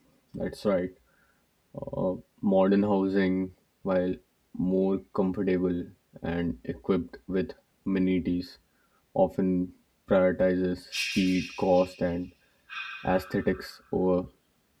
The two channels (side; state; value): both; identical; correlation 1.00